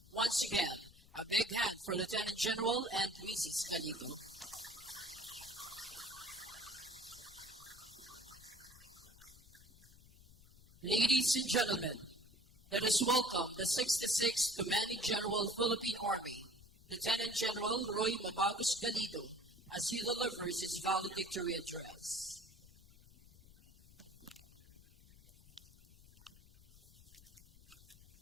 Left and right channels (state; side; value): noise; left; rumble, 23 dB below the sound